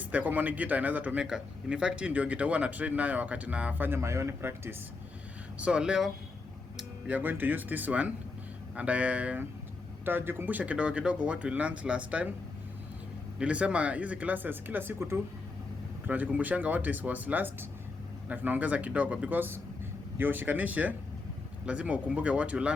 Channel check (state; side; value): quieter; right; 3.8 dB